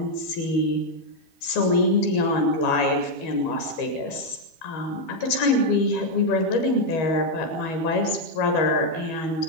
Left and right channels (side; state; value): right; late; 12 ms